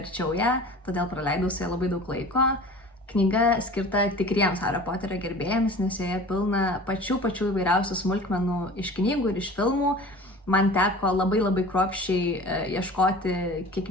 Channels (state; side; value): normal; both; correlation 0.41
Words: ją, todėl praleidau su ją labai daug laiko. Knyga skirta tikriems Hario Poterio gerbėjams, nes joje pilna pačių įvairiausių smulkmenų iš knygų ir iš filmų. Man teko labai kruopščiai ieškoti